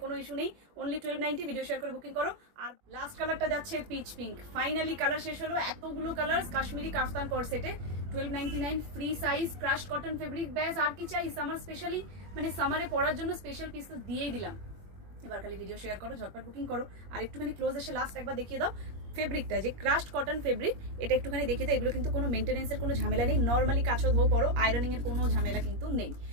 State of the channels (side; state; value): left; late; 21 ms